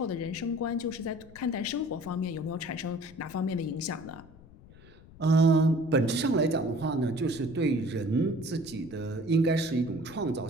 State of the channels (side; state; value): left; noise; rumble, 21 dB below the sound